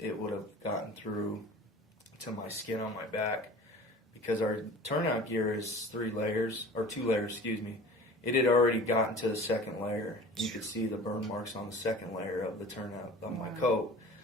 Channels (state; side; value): normal; both; correlation 0.41